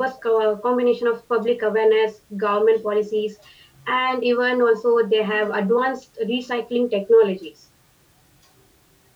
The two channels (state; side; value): identical; both; correlation 1.00